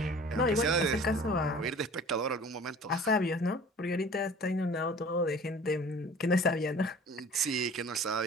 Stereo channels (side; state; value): both; normal; correlation 0.45